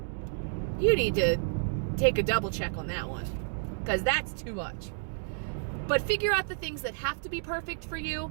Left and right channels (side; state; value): left; silent; digital silence